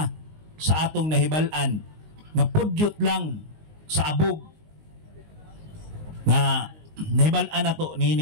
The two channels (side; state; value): left; late; 19 ms